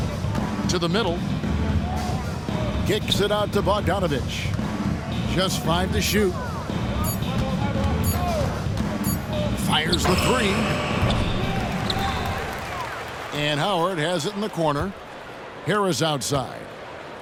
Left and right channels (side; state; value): both; identical; correlation 1.00